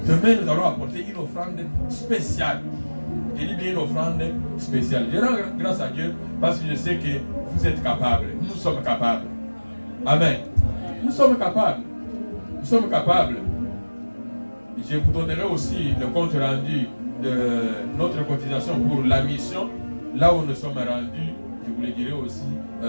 Demain, nous allons apporter une offrande spéciale. Je dis bien une offrande spéciale. Je rends grâce à Dieu parce que je sais que vous êtes capables. Nous sommes capables. Amen. Nous sommes capables. Nous sommes capables. Je vous donnerai aussi le compte rendu de notre cotisation pour la mission. Là où nous sommes rendus, je vous le dirai aussi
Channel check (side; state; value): both; inverted; correlation -1.00